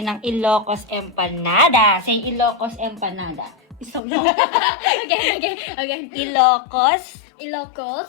ng Ilocos Empanada. Say Ilocos Empanada. Isang lang. Again. Ilocos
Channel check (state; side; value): drops out; right; at 4.0 s